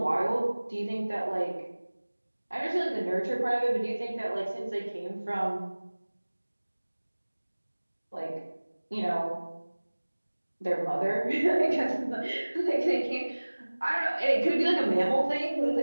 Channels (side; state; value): both; inverted; correlation -1.00